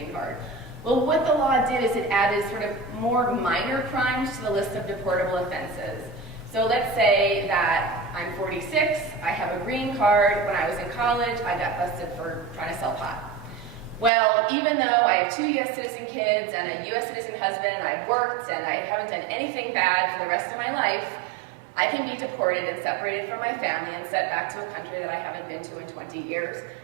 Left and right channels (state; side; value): drops out; left; at 14.1 s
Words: card. Well, what the law did is it added sort of more minor crimes to the list of deportable offenses. So let's say that I'm 46, I have a green card. When I was in college, I got busted for trying to sell pot. Well, even though I have 2 U.S. citizen kids and a U.S. citizen husband, and I've worked and I haven't done anything bad for the rest of my life, I can be deported and separated from my family and sent back to a country that I haven't been to in 20 years